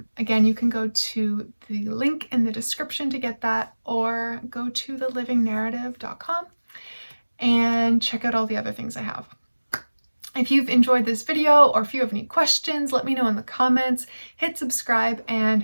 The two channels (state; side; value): inverted; both; correlation -1.00